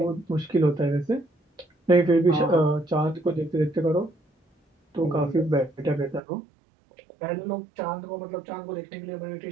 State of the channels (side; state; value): left; drops out; at 6.2 s